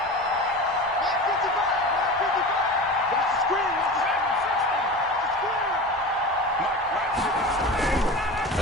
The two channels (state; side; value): normal; both; correlation 0.31